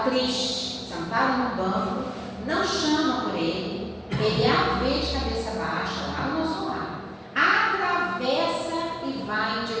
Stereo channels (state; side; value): identical; both; correlation 1.00